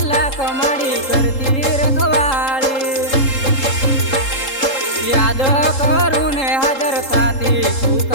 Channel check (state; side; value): late; right; 3.7 ms